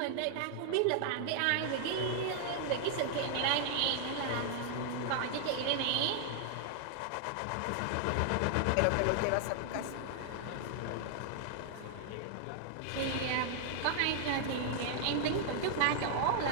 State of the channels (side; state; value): both; different; correlation -0.01